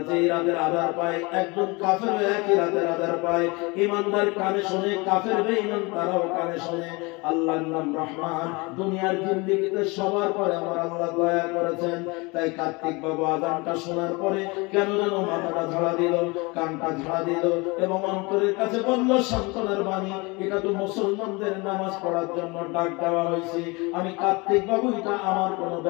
যেই রাতের আধার পায়, একজন কাফেরও একই রাতের আধার পায়। ইমানদার কানে শুনে, কাফের বেঈমান তারাও কানে শুনে। আল্লাহর নাম রহমান। দুনিয়ার জিন্দেগিতে সবার পরে আমার আল্লাহ দয়া করেছেন। তাই কার্তিক বাবু আযানটা শোনার পরে কেন যেন মাথাটা ঝাড়া দিল, কানটা ঝাড়া দিল এবং অন্তরের কাছে বলল সান্ত্বনার বাণী, এটা তো মুসলমানদের নামাজ পড়ার জন্য ডাক দেওয়া হয়েছে। আমি কার্তিক বাবু, এটা আমার কোনো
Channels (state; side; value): quieter; right; 26.4 dB